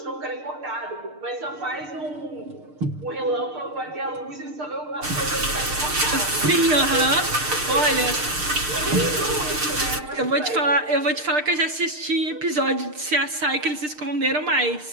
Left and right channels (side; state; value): left; late; 6.6 ms